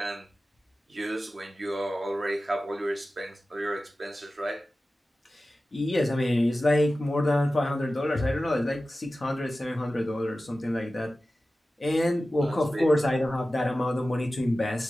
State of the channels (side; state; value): both; normal; correlation 0.95